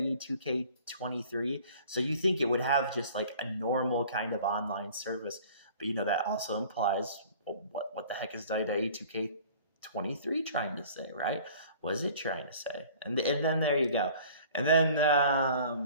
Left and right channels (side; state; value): both; inverted; correlation -0.48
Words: 2K23. So you think it would have just like a normal kind of online service, but that also implies what the heck is WWE 2K23 trying to say, right? What is it trying to say? And then there you go. And